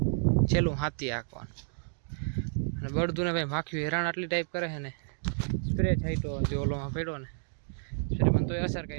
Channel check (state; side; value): silent; left; digital silence